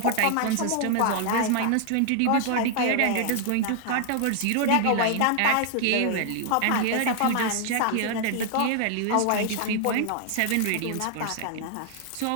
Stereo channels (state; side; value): different; both; correlation 0.00